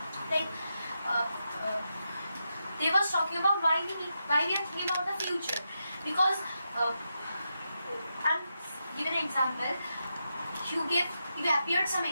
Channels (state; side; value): inverted; both; correlation -0.86